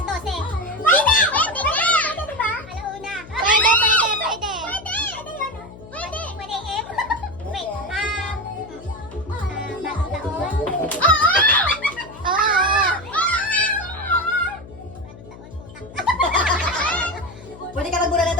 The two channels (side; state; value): left; noise; hum, 17 dB below the sound